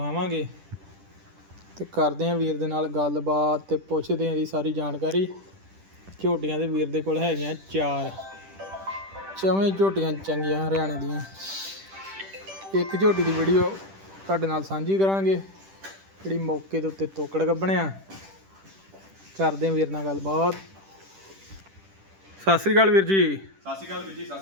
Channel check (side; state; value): left; late; 10 ms